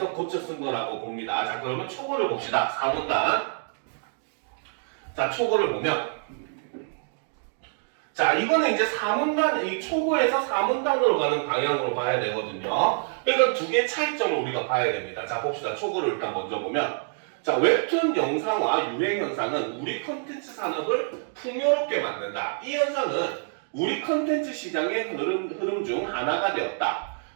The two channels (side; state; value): left; silent; 60 dB below the other